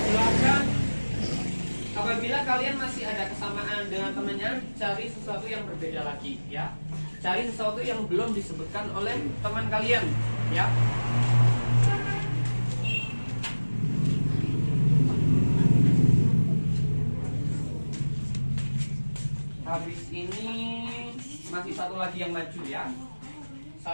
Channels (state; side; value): inverted; both; correlation -1.00